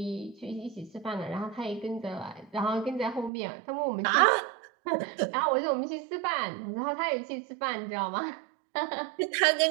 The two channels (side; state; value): left; drops out; at 3.3 s